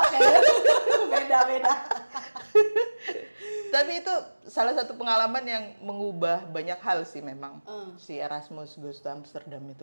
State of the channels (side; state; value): both; inverted; correlation -1.00